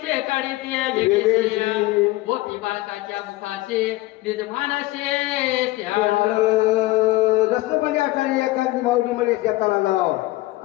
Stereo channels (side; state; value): right; quieter; 18.8 dB